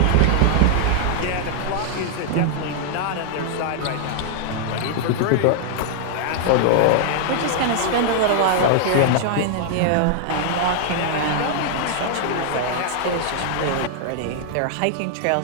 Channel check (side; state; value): both; different; correlation -0.01